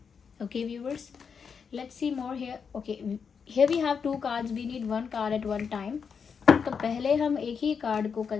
Okay viewers, let's see more here. Okay, here we have 2 cards, we need 1 card at 1 time. तो पहले हम एक ही कार्ड को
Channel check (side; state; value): right; quieter; 6.2 dB